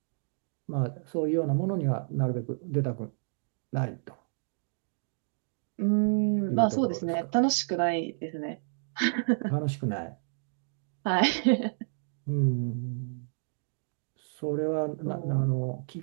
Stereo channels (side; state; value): left; silent; digital silence